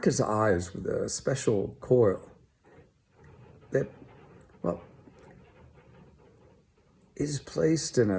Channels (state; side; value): identical; both; correlation 1.00